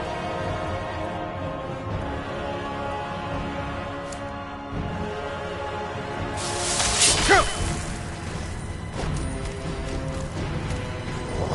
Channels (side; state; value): both; identical; correlation 1.00